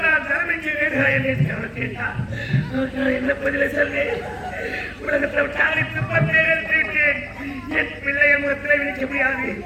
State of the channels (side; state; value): both; identical; correlation 1.00